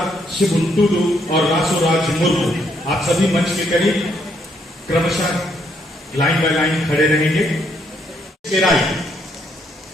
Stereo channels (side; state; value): both; normal; correlation 0.73